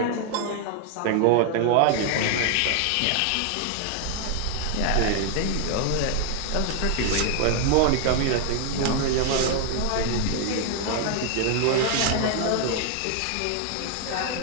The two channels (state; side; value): different; both; correlation 0.00